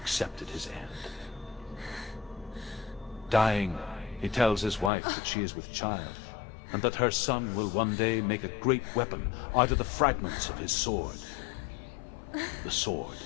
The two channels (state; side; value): drops out; right; at 4.9 s